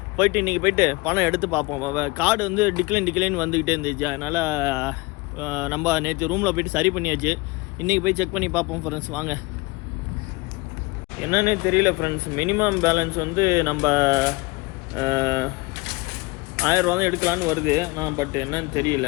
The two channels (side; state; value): right; quieter; 24.3 dB